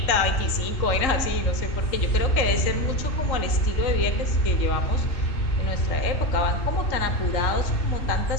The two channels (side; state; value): right; late; 3.7 ms